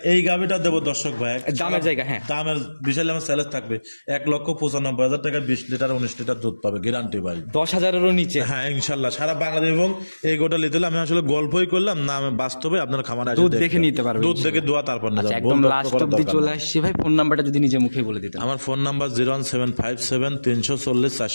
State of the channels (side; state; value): both; inverted; correlation -1.00